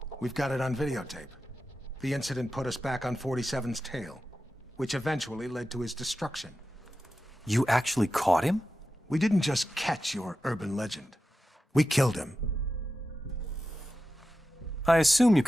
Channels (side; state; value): both; normal; correlation 0.92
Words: We've got it on videotape. The incident put us back on 47's tail, which eventually led to his destruction. You actually caught him? We didn't just catch your urban legend. We killed him. I assume you